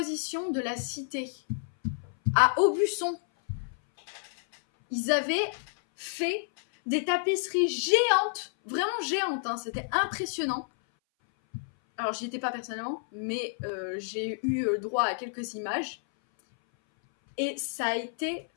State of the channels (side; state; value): right; silent; 57 dB below the other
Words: de la cité à Aubusson. Ils avaient fait des tapisseries géantes, vraiment géantes, hein, c'était impressionnant. Alors, j'y étais pas personnellement, mais j'ai eu droit à quelques images. Et ça a été